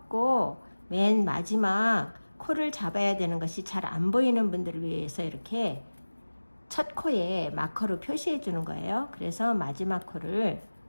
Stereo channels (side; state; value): both; inverted; correlation -1.00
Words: 맨 마지막 코를 잡아야 되는 것이 잘 안 보이는 분들을 위해서 이렇게 첫 코에 마커로 표시해 주는 거예요. 그래서 마지막 코를